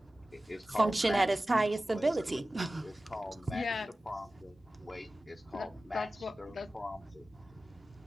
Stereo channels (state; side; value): normal; both; correlation 0.96